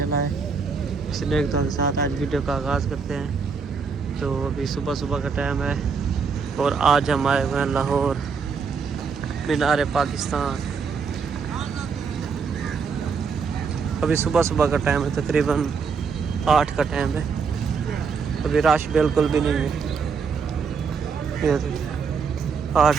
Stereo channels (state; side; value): quieter; left; 5.5 dB